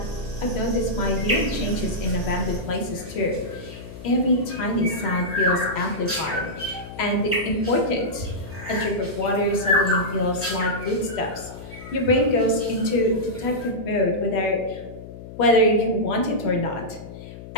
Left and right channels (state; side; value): noise; left; hum, 14 dB below the sound